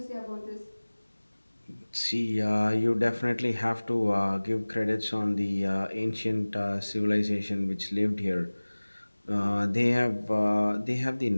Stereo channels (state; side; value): inverted; both; correlation -1.00